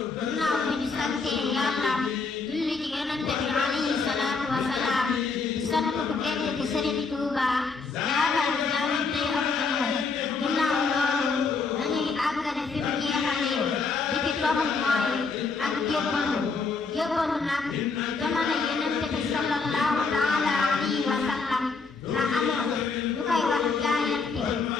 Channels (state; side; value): quieter; right; 4.5 dB